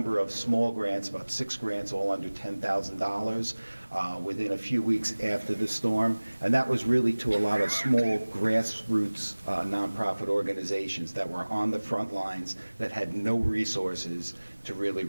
of small grants, about 6 grants, all under $10,000 within a few weeks after the storm. And that was really to a lot of small grassroots nonprofit organizations that were on the front lines that had no resources to really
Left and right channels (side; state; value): both; inverted; correlation -1.00